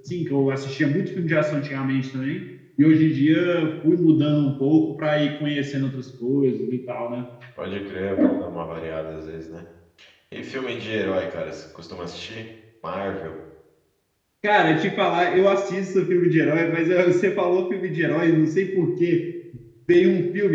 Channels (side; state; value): both; identical; correlation 1.00